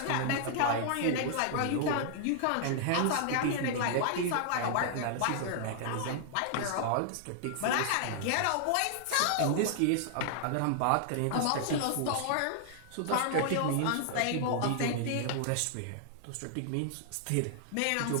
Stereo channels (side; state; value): both; different; correlation -0.01